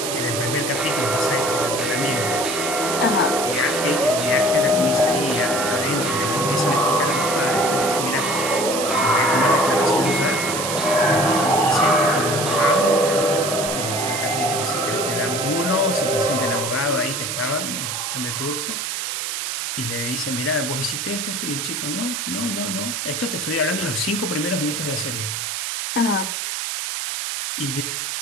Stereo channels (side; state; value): right; noise; hiss, 3 dB below the sound